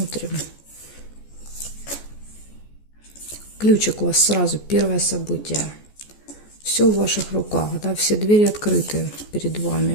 Ключик у вас сразу, первое событие. Все в ваших руках, да, все двери открыты перед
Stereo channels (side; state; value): right; late; 14 ms